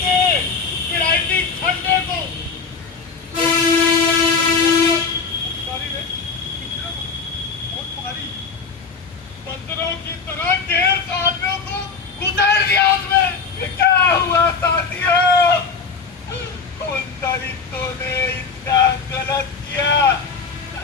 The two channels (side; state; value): right; quieter; 5.1 dB